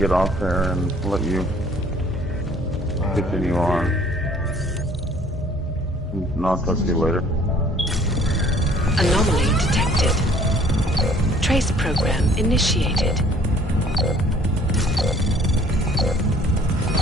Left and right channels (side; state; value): both; normal; correlation 0.57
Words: off there and let you continue on. And I'll talk to you later. Anomaly detected. Trace program initiated.